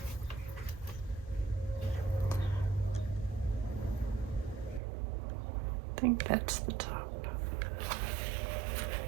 I think that's the top.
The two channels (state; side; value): drops out; left; at 4.8 s